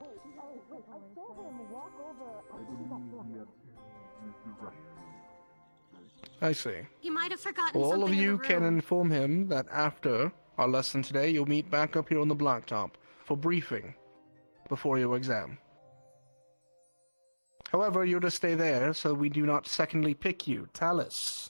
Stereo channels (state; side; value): inverted; both; correlation -1.00